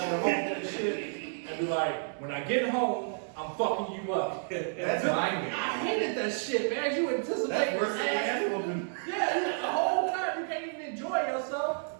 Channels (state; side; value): silent; left; digital silence